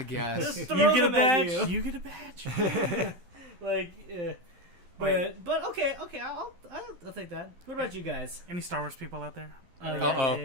guess. Just throw You get a them at badge. you. You get a badge. Like, but okay, I'll take that. What about you guys? Any Star Wars people out there? Uh-oh.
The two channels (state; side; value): late; left; 12 ms